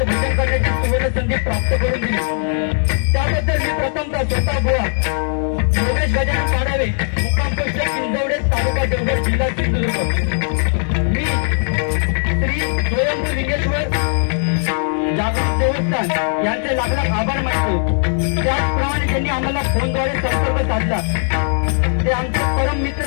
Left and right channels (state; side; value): silent; right; 65 dB below the other